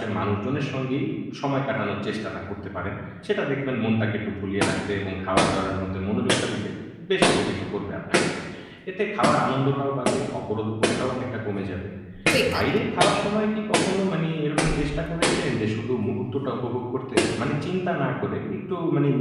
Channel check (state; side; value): identical; both; correlation 1.00